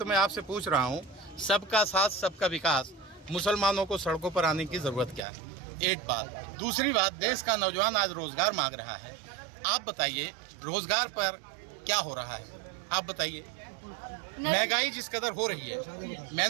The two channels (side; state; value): left; drops out; at 5.2 s